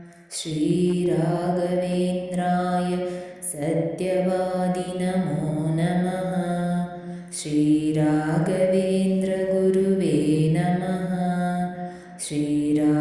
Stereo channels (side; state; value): both; identical; correlation 1.00